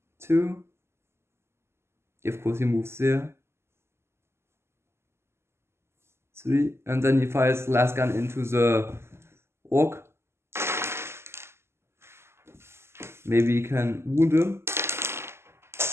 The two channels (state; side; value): late; left; 0.12 ms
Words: 2. Of course he moves there. 3. And then he fires the last gun into the orc. Maybe he can wound him.